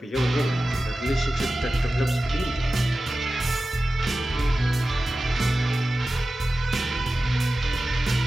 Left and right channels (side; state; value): both; normal; correlation 0.94